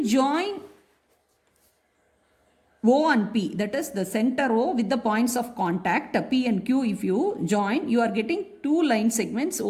join O and P, that is the center O with the points of contact P and Q, if you join, you are getting two line segments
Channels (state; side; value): identical; both; correlation 1.00